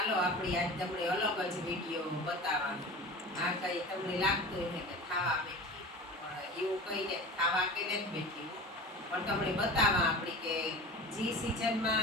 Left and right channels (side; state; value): both; normal; correlation 0.34